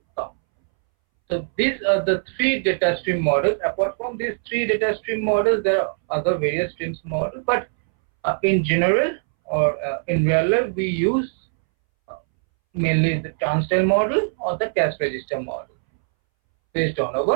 come. So these are the 3 data stream models. Apart from these 3 data stream models, there are other various streams models, but in general or in real life, we use mainly the turnstile model or the cache register model based on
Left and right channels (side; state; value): left; silent; 63 dB below the other